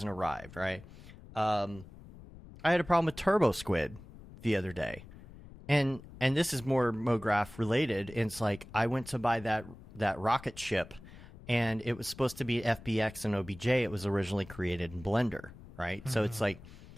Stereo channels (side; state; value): left; noise; rumble, 18 dB below the sound